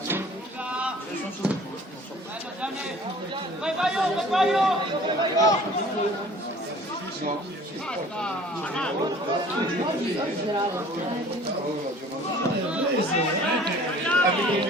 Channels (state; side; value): normal; both; correlation 0.49